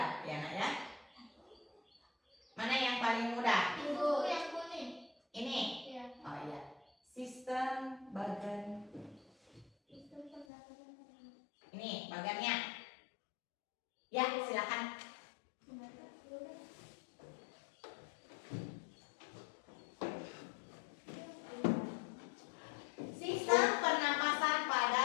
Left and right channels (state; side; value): drops out; right; at 10.5 s